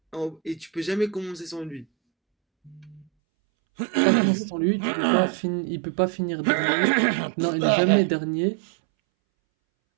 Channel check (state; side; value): drops out; left; at 3.1 s